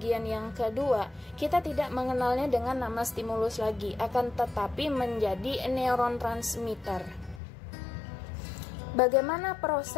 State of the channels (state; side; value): drops out; right; at 7.4 s